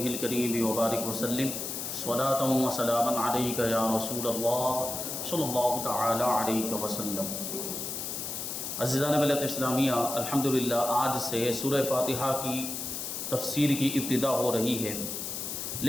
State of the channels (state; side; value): noise; left; hiss, 5 dB below the sound